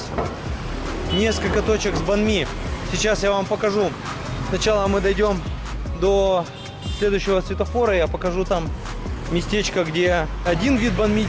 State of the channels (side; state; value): both; identical; correlation 1.00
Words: Несколько точек с банми. Сейчас я вам покажу. Сначала мы дойдем до следующего светофора. Я покажу там местечко, где один вид банми